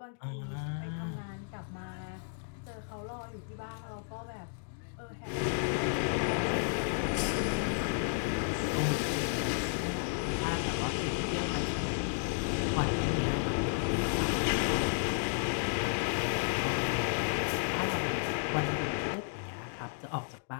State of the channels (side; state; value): right; silent; digital silence